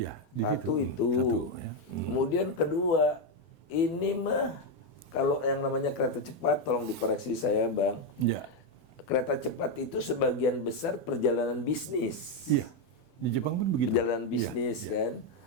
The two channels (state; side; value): late; right; 32 ms